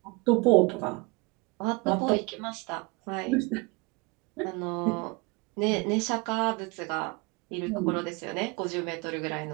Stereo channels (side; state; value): left; quieter; 26.9 dB